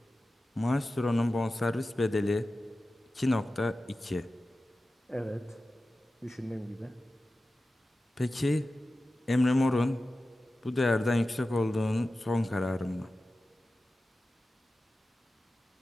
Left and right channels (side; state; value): both; normal; correlation 0.94